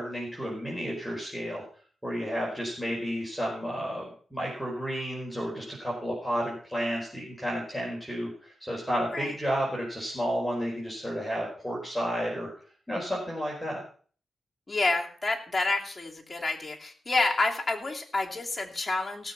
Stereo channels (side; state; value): both; normal; correlation 0.91